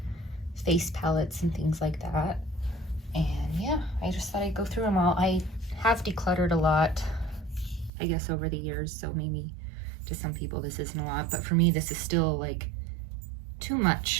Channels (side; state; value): left; drops out; at 7.9 s